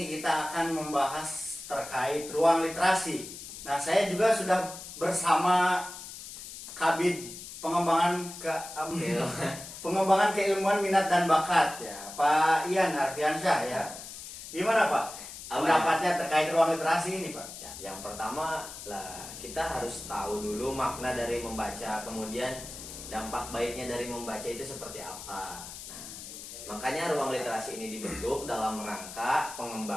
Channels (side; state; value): left; noise; hiss, 12 dB below the sound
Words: kita akan membahas terkait ruang literasi. Nah, saya juga sudah bersama Kabid pengembangan keilmuan minat dan bakat ya, Pak Ian Arfiansyah ya. Gimana Pak? Pendapatnya terkait ruang literasi ini Pak? Yang pertama lah, kita harus tahu dulu makna dari membaca, kemudian dampak baiknya dari membaca itu seperti apa. Nah, makanya ruang literasi ini dibentuk dalam rangka